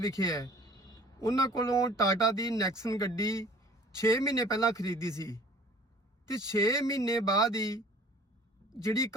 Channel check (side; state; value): both; normal; correlation 0.50